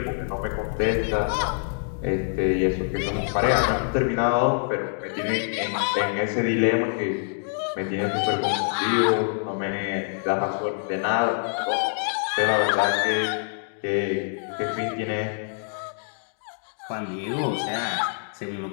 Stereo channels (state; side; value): silent; right; digital silence